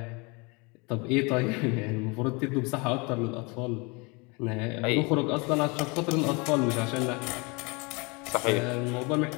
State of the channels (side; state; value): right; quieter; 28.9 dB